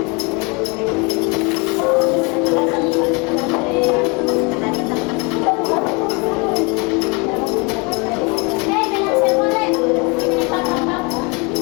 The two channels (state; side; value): quieter; right; 30.1 dB